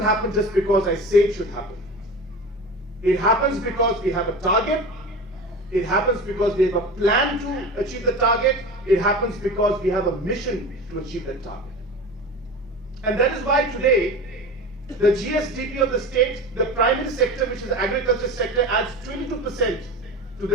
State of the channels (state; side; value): normal; both; correlation 0.32